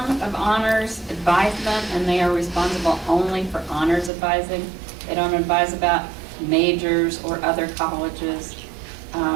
of honors advisement, and they are responsible only for honors advising. They don't advise about majors or other colleges,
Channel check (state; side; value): drops out; left; at 4.1 s